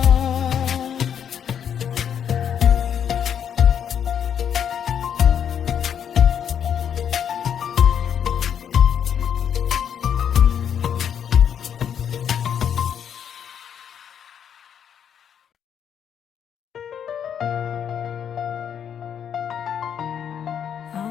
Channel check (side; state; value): right; quieter; 8.5 dB